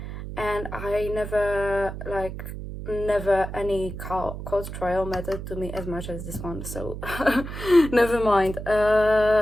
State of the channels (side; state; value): right; noise; hum, 8 dB below the sound